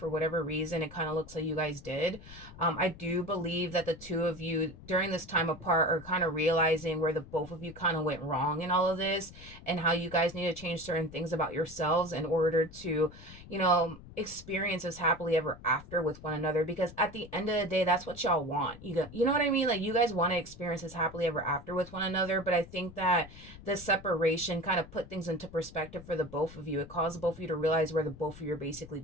whatever reason. It kind of looks like you guys did. I do believe that the two of you during this time apart are kind of realizing where the both of you kind of went wrong in all of this, and how you guys need to change certain things about yourselves in order to, experience this happily ever after with one another. Because at the end of the day, that's what y'all want. You know what I mean? Like, you guys want to experience this happily ever after with one another, but I think that the separation kind of put things into perspective for the both of you. It caused both of you to realize where the both of you are basically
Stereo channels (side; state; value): left; noise; rumble, 17 dB below the sound